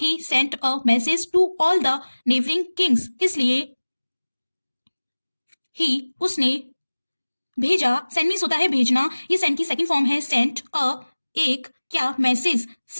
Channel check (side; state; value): both; inverted; correlation -1.00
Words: sent a message to all the neighbouring kings, इसलिए ही, उसने भेजा। सेंड मीन्स होता है भेजना, ये सेंड की सेकंड फॉर्म है सेंट। अ, एक, क्या? मैसेज,